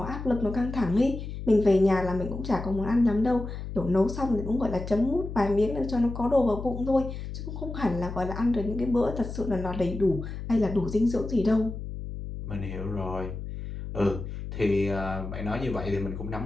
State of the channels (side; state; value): left; noise; hum, 8 dB below the sound